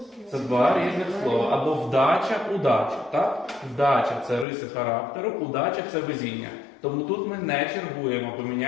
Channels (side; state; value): right; drops out; at 4.5 s